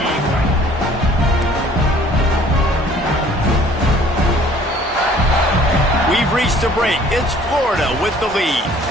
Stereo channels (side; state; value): both; normal; correlation 0.55